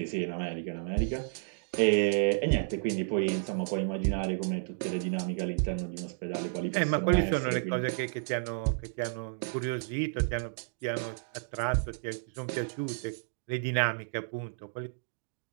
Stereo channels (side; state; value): left; silent; digital silence